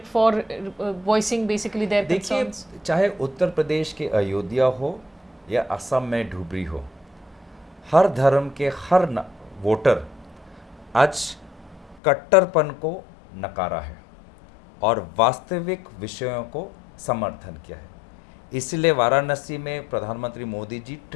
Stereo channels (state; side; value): drops out; right; at 12.0 s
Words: for voicing basically their concerns? देखिए, चाहे उत्तर प्रदेश के अयोध्या हो या असम में धुबरी हो, हर धर्म के हर वोटर आज कट्टरपन को नकारा है और वास्तविक विषयों को समर्थन किया है। इसलिए वाराणसी में प्रधानमंत्री मोदी जी